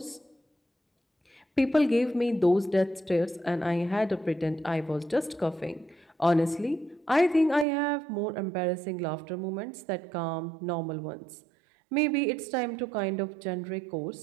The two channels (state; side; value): drops out; left; at 7.7 s